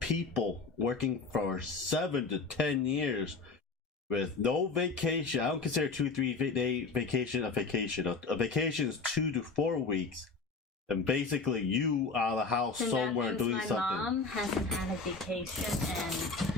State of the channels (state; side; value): quieter; right; 4.2 dB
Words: working for 7 to 10 years with no vacation. I don't consider 2-3 day vacation a vacation. A vacation is 2 to 4 weeks, and basically you out of the house and somewhere doing something. My mom hasn't had a vacation,